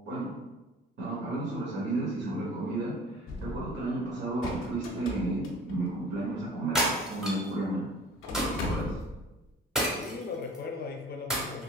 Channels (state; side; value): normal; both; correlation 0.45